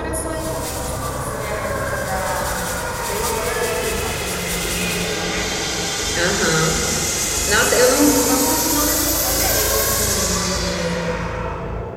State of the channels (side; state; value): both; identical; correlation 1.00